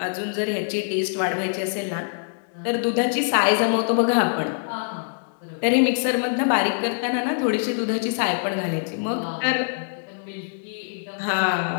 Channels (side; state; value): right; silent; digital silence